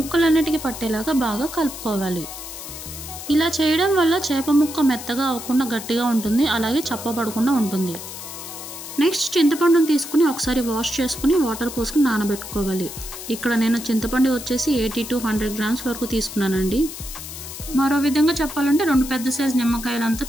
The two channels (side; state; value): left; noise; hiss, 11 dB below the sound